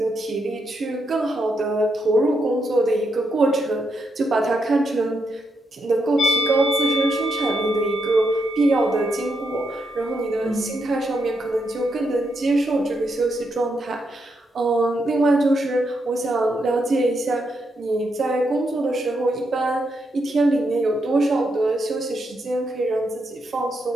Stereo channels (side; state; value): both; normal; correlation 0.81